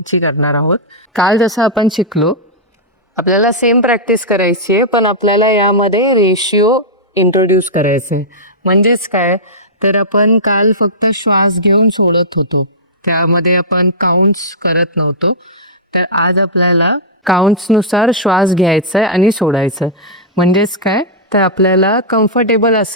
करणार आहोत. काल जसं आपण शिकलो, आपल्याला सेम प्रॅक्टिस करायची आहे, पण आपल्याला यामध्ये रेशिओ इंट्रोड्यूस करायचं आहे. म्हणजेच काय, तर आपण काल फक्त श्वास घेऊन सोडत होतो, त्यामध्ये आपण काउंट्स करत नव्हतो. तर आज आपल्याला काउंट्सनुसार श्वास घ्यायचा आहे आणि सोडायचं आहे. म्हणजेच काय, तर आपल्याला कम्फर्टेबल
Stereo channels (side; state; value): both; normal; correlation -0.12